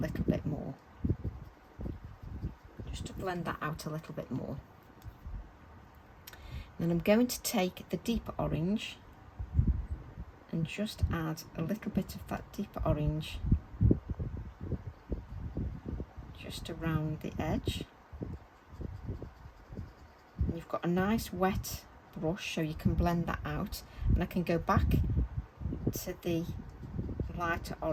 bit more. Just to blend that out a little bit more. Then I'm going to take the deeper orange and just add a little bit of that deeper orange just around the edge. And you've got a nice wet brush so you can blend that out, and I can go back to the lighter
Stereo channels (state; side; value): identical; both; correlation 1.00